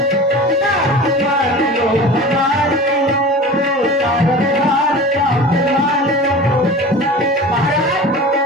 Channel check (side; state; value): both; normal; correlation 0.36